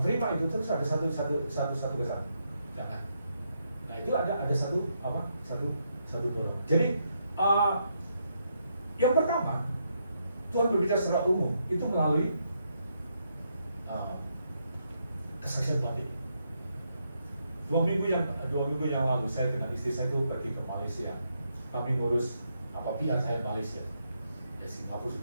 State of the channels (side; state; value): both; inverted; correlation -0.79